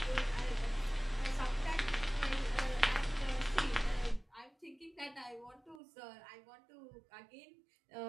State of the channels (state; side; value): drops out; left; at 5.8 s